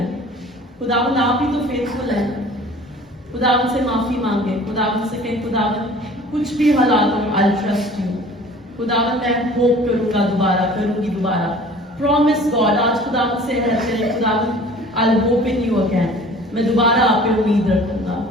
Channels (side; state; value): both; normal; correlation 0.47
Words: खुदावन आप ही तो फेथफुल हैं। खुदावन से माफी मांगे, खुदावन से कहें खुदावन कुछ भी हालात हो आई ट्रस्ट यू। खुदावन मैं होप करूंगा, दोबारा करूंगी दोबारा। प्रॉमिस गॉड, आज खुदावन से कहते हैं खुदावन I hope in you again. मैं दोबारा आप पे उम्मीद रखूंगा,